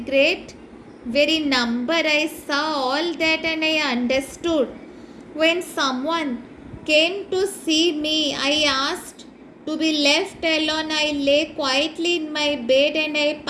great very number. I saw all that and I understood. When someone came to see me, I asked to be left alone. I lay quietly in my bed and I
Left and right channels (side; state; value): both; identical; correlation 1.00